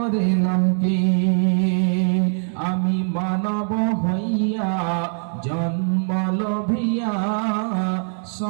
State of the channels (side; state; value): left; silent; 55 dB below the other